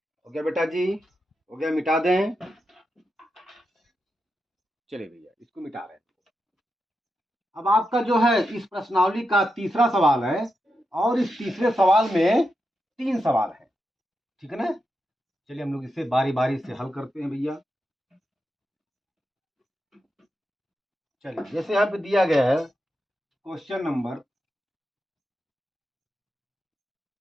हो गया बेटा जी, हो गया, मिटा दें। चलिए भैया इसको मिटा रहे हैं। अब आपका जो है इस प्रश्नावली का तीसरा सवाल है, और इस तीसरे सवाल में 3 सवाल है, ठीक है ना। चलिए हम लोग इसे बारी बारी से हल करते हैं भैया। चलिए, जैसे यहाँ पे दिया गया है क्वेश्चन नंबर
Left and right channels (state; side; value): normal; both; correlation 0.87